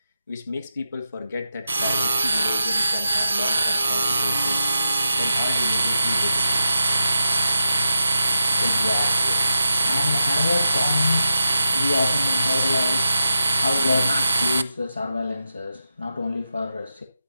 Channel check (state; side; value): inverted; both; correlation -0.89